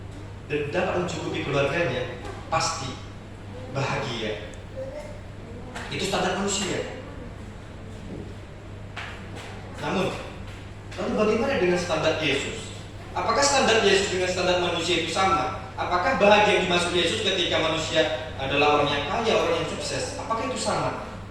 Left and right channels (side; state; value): both; identical; correlation 1.00